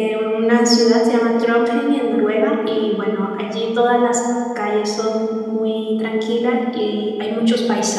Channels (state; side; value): identical; both; correlation 1.00